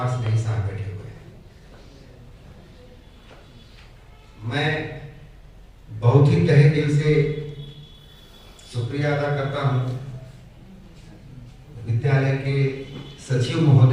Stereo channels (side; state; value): both; identical; correlation 1.00